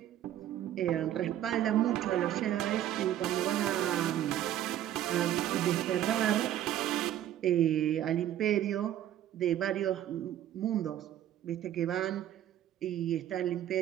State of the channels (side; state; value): left; quieter; 11.8 dB